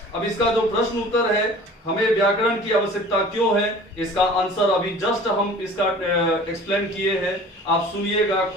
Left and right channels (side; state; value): both; normal; correlation 0.44